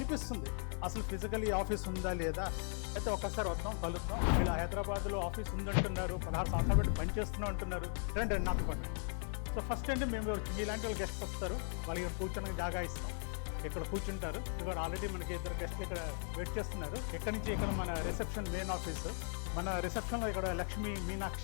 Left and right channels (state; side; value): silent; right; 52 dB below the other